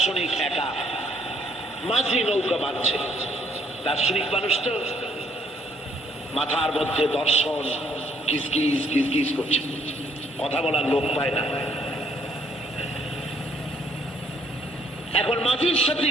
একা, মাঝি নৌকা বাঁধছে। দার্শনিক মানুষ তো মাথার মধ্যে দর্শন কিসকিস কিসকিস করছে, কথা বলার লোক পায় না। এখন মাঝির সাথে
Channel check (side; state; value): both; normal; correlation 0.66